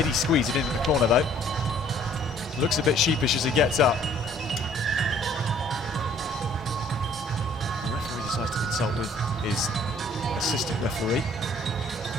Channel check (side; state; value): both; normal; correlation 0.57